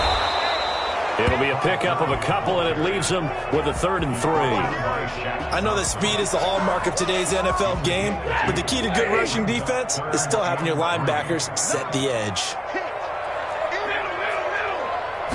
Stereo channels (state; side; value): identical; both; correlation 1.00